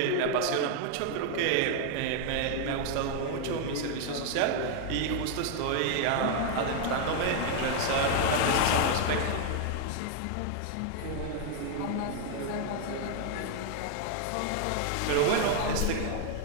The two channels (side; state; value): both; different; correlation 0.00